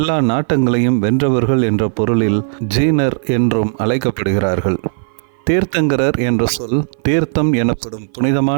நாட்டங்களையும் வென்றவர்கள் என்ற பொருளில் ஜீனர் என்றும் அழைக்கப்படுகிறார்கள். தீர்த்தங்கரர் என்ற சொல் தீர்த்தம் எனப்படும்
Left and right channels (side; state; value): left; silent; 57 dB below the other